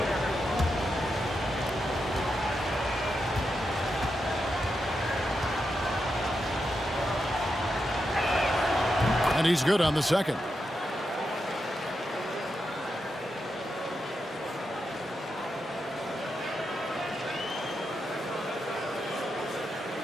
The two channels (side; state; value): both; normal; correlation 0.86